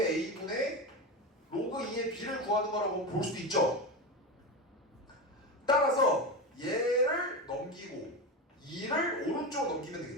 로그 2의 b를 구하는 거라고 볼 수도 있죠. 따라서 얘를 넘기고 2를 오른쪽으로 넘기면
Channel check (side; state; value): both; normal; correlation 0.19